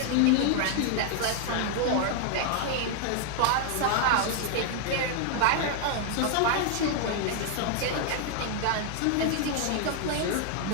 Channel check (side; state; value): both; different; correlation 0.00